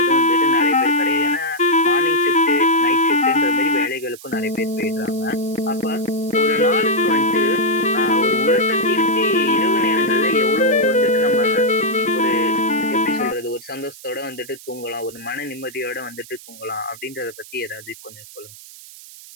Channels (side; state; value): right; noise; hiss, 18 dB below the sound